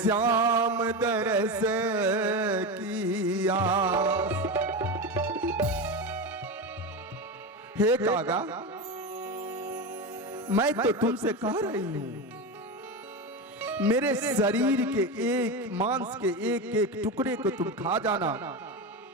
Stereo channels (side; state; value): both; normal; correlation 0.19